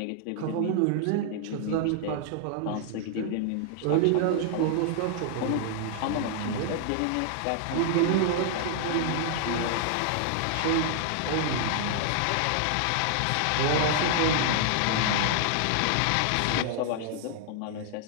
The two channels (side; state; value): both; different; correlation -0.01